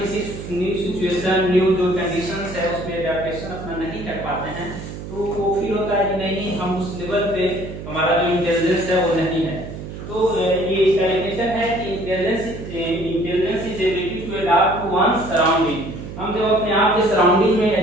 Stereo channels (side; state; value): right; noise; hum, 10 dB below the sound